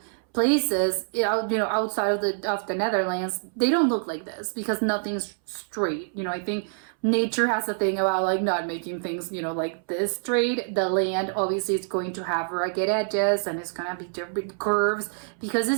places outside of the Netherlands, they don't look like this because nothing's straight. I think nature has a thing about like not making things like this straight. The land obviously is going to have rugged edges, and it's gonna be different curves because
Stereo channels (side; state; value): left; silent; 61 dB below the other